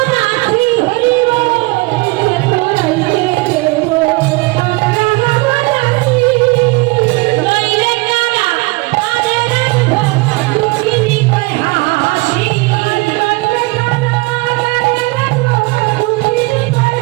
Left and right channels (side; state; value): left; quieter; 25.1 dB